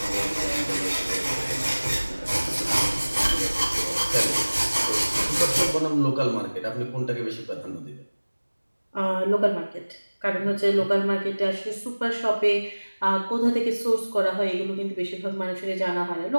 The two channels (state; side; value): inverted; both; correlation -1.00